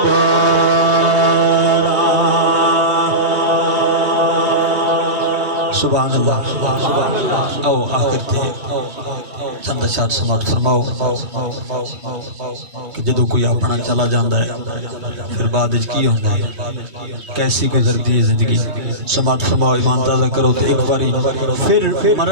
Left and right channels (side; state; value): left; late; 3.1 ms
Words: सुभान अल्लाह आओ आखिर ते चंद शाद समाप्त फरमाओ कि जदों कोई अपना चला जाता है फिर बाद की होता है कैसी गुजरती है जिंदगी समाप्त फरमाओ ईमान ताज़ा करो तो एक बारी फिर